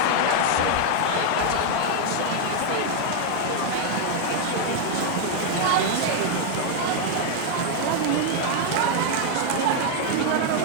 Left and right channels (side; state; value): both; different; correlation 0.01